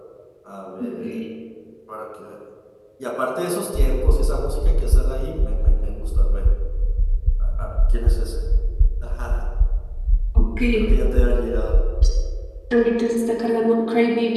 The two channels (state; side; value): identical; both; correlation 1.00